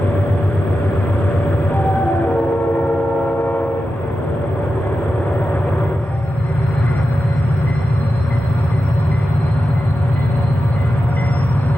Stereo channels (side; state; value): both; normal; correlation 0.91